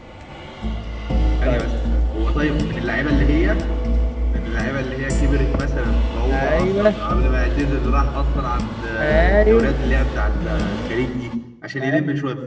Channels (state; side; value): identical; both; correlation 1.00